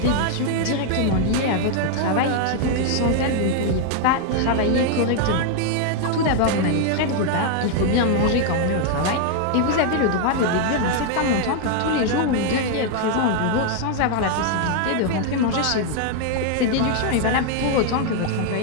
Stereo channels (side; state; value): both; different; correlation 0.00